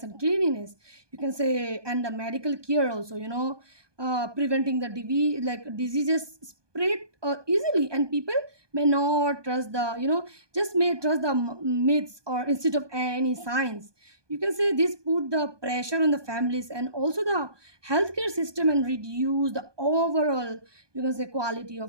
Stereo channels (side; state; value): left; late; 1.2 ms